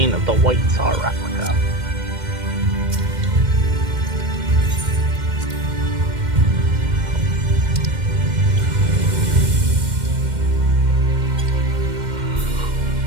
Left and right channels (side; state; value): left; late; 2.1 ms